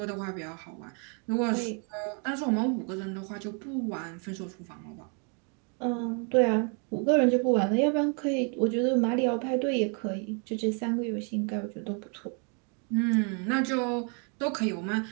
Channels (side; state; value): left; quieter; 38.3 dB